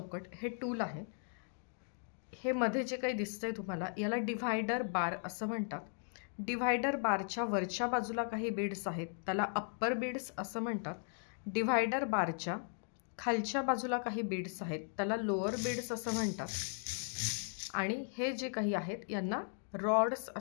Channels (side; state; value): right; silent; 53 dB below the other